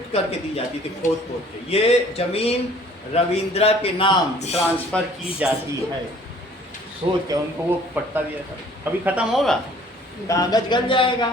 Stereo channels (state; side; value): normal; both; correlation 0.54